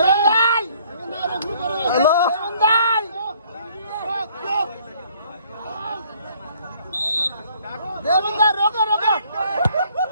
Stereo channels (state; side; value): inverted; both; correlation -0.61